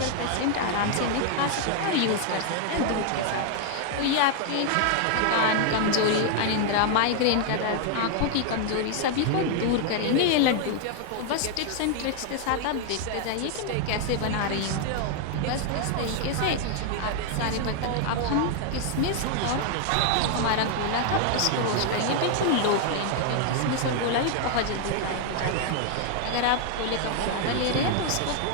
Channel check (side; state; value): both; different; correlation 0.00